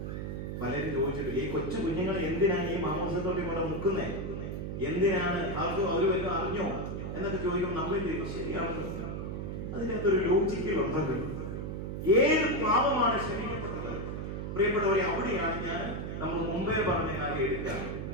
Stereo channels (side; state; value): right; noise; hum, 5 dB below the sound